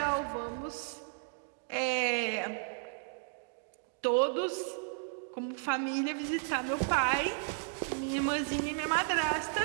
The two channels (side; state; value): left; silent; digital silence